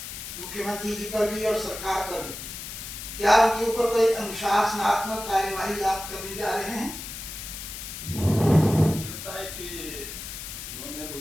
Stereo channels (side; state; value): left; noise; hiss, 9 dB below the sound